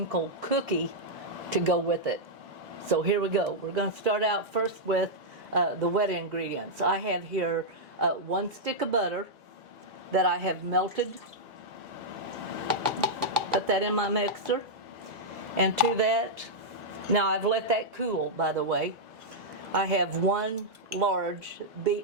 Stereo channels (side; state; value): both; normal; correlation -0.06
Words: cookie to go with it. So here we go. We're going to start out first with the wet ingredients. I have here 1 stick of butter that I have melted. Put that in my mixer. And to that, now I've let that cool, by the way. I have 1 large